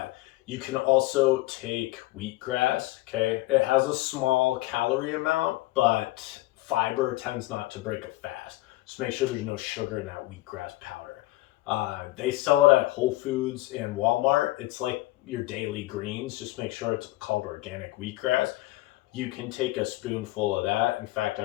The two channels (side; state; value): right; quieter; 18.4 dB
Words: You can also take wheatgrass, okay? It has a small calorie amount, but fiber tends not to break a fast. Just make sure there's no sugar in that wheatgrass powder. They sell it at Whole Foods and Walmart. It's like your daily greens. Just make sure it's called organic wheatgrass. You can take a spoonful of that. In fact, I